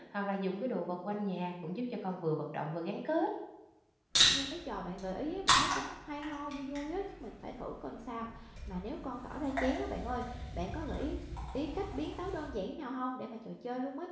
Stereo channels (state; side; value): identical; both; correlation 1.00